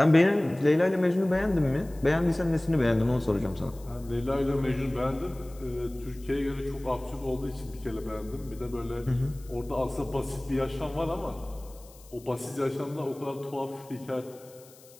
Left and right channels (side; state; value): left; noise; hiss, 24 dB below the sound